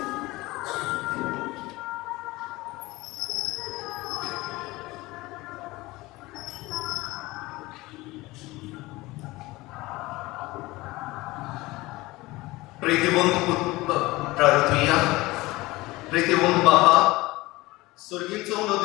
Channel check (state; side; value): quieter; right; 20.5 dB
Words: प्रीतिवंत प्रार्थुया. प्रीतिवंत बापा, सुर्गीचो उडो